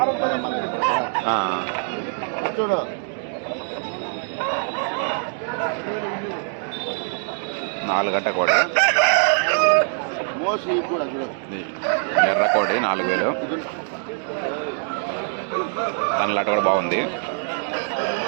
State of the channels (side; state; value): left; silent; 63 dB below the other